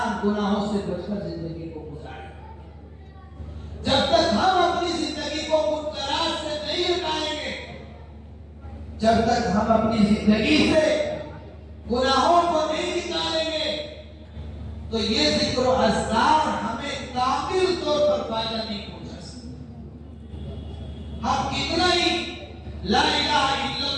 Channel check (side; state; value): both; identical; correlation 1.00